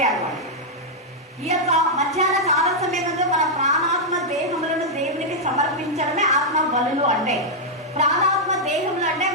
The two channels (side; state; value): both; normal; correlation -0.04